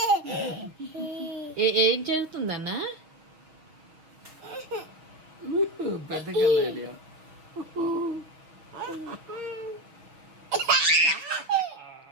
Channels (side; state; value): left; late; 6.4 ms